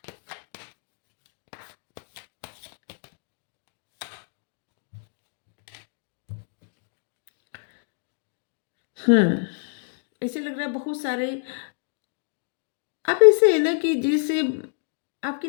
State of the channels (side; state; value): right; silent; digital silence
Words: ऐसे लग रहा है बहुत सारे आप ऐसे है ना कि जैसे आपकी